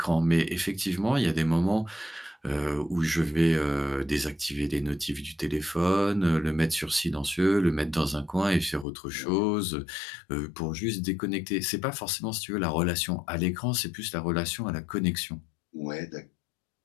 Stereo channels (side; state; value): right; drops out; at 8.8 s